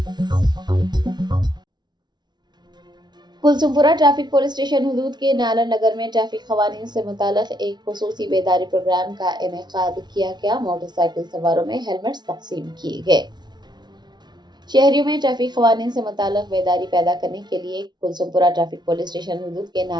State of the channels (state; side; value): late; left; 0.20 ms